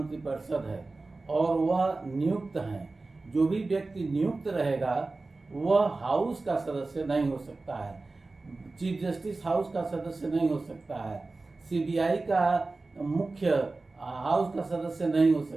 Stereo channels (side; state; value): left; quieter; 3.4 dB